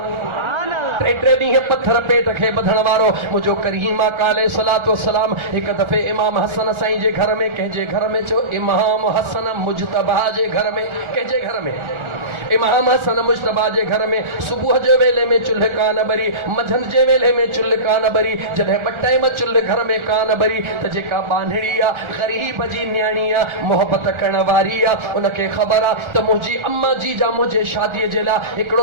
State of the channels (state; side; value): late; left; 1.4 ms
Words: टे ॾींहं पत्थर पेट खे ॿधण वारो मुंहिंजो करीम आका अलैहिस्सलातु वस्सलाम हिकु दफ़े इमाम हसन साईं जे घर में, कंहिंजे घर में चयो, इमाम हसन मुजतबा जे घर में, कंहिंजे घर में? इमाम हसन मुजतबा जे घर में सुबुह जे वेले में चुल्ह कान ॿरी, मंझंदि जे वेले में चुल्ह कान ॿरी। जॾहिं ॿ टाइम चुल्ह घर में कान ॿरी त जेका बांधड़ी आहे, ग़रीब जी न्याणी आहे, मोहबत करण वारी आहे, उनखे ख़बर आहे त मुंहिंजी अम्मा जी जा मुंहिंजे शादीअ जे लाइ